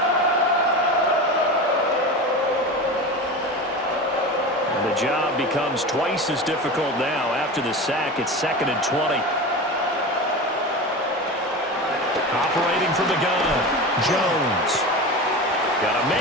The job becomes twice as difficult now. After the sack, it's 2nd and 20. Operating from the gun, Jones. Got a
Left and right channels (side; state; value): both; normal; correlation 0.28